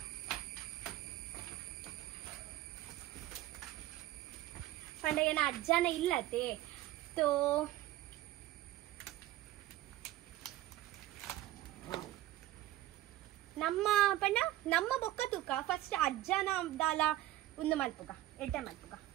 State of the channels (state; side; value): quieter; left; 15.0 dB